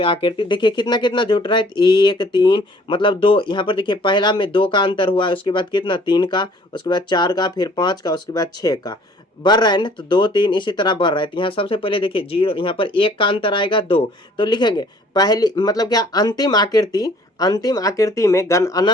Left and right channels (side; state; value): both; normal; correlation 0.56